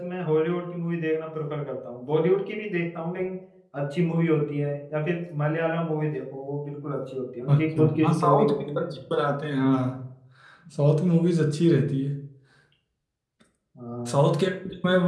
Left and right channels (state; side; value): identical; both; correlation 1.00